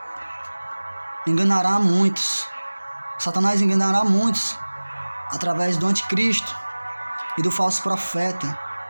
Enganará muitos. Satanás enganará muitos através do anticristo e do falso profeta.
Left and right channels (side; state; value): both; inverted; correlation -1.00